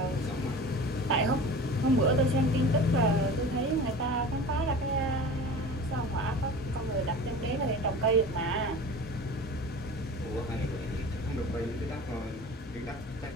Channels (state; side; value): normal; both; correlation 0.37